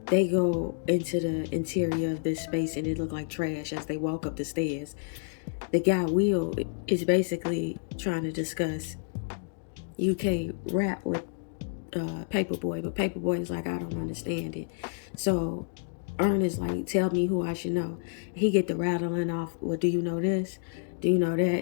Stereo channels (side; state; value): right; silent; digital silence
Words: they go into the interior of this space and it looked like trash as they walk up the stairs. The guy Will is basically trying to discuss UK rap with Paperboy, but Paperboy is like, I don't understand it. So Ern is like, tell me who I should know. He get the rattling off, well, do you know this? Do you know that?